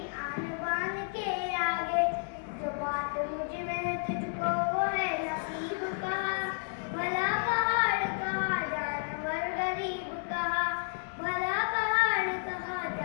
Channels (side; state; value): right; silent; digital silence